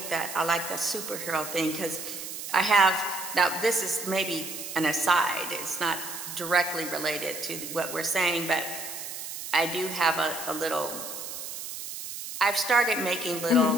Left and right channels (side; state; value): right; noise; hiss, 8 dB below the sound